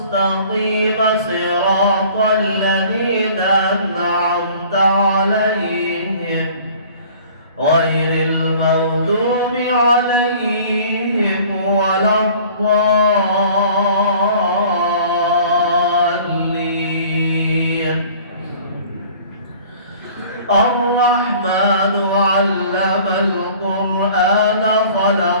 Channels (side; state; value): both; inverted; correlation -0.49